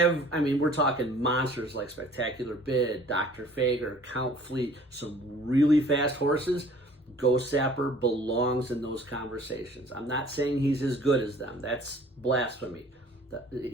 talking monsters like Spectacular Bid, Dr. Fager, Count Fleet, some really fast horses. Ghostzapper belongs in those conversations. I'm not saying he's as good as them. That's blasphemy.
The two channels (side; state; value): both; normal; correlation 0.52